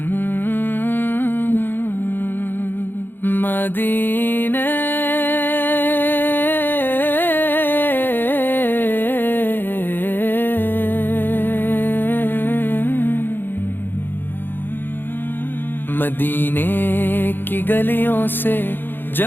مدینے کی گلیوں سے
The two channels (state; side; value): late; right; 0.098 ms